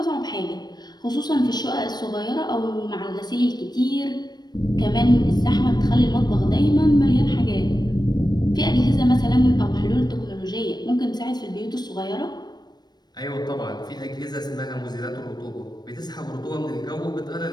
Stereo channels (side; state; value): right; late; 0.20 ms